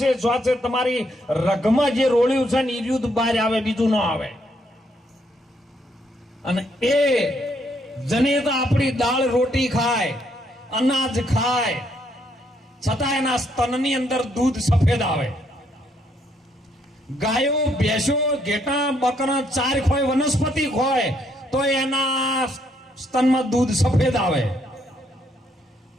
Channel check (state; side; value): normal; both; correlation 0.73